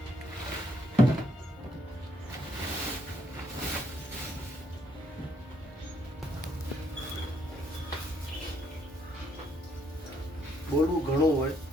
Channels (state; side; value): normal; both; correlation 0.71